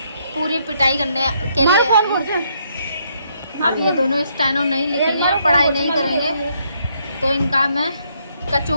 पूरी पिटाई करने के लिए आई हूं। अब ये दोनों स्टेनो नहीं लिखेंगे, पढ़ाई नहीं करेंगे तो इनका मैं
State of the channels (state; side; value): inverted; both; correlation -0.72